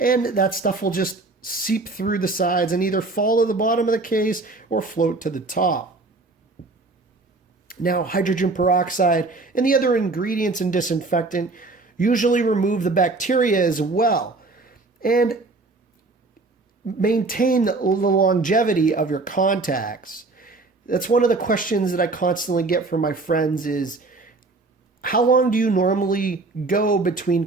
that stuff will just seep through the sides and either fall to the bottom of the case or float to the top. Now, hydrogen peroxide and the other ingredients in disinfectant usually remove the bacteria as well and maintain the longevity of your contacts. That's one of the questions that I constantly get from my friends is, how long do you normally go between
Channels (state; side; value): quieter; left; 3.5 dB